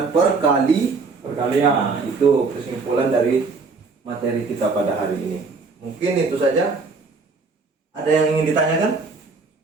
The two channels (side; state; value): left; quieter; 4.3 dB